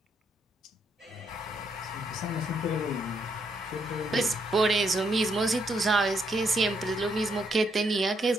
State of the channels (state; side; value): normal; both; correlation 0.75